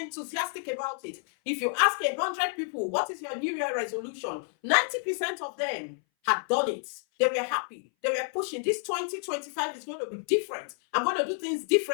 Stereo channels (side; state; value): right; silent; 58 dB below the other